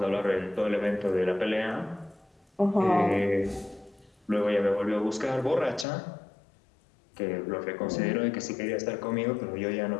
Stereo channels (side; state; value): right; drops out; at 5.9 s